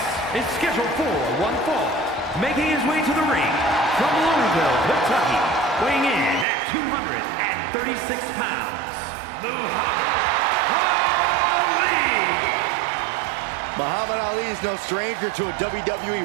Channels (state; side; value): drops out; left; at 6.5 s